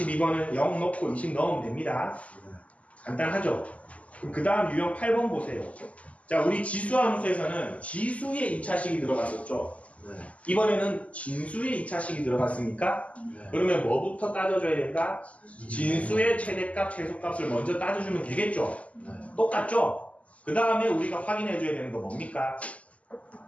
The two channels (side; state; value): right; late; 0.068 ms